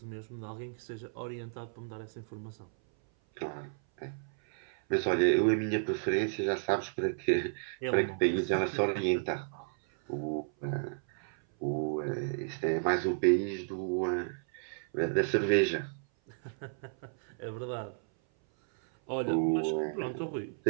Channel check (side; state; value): left; silent; 56 dB below the other